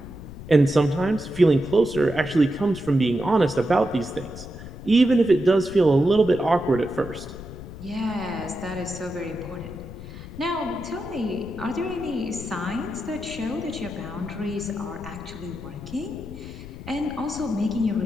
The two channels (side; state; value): left; noise; rumble, 13 dB below the sound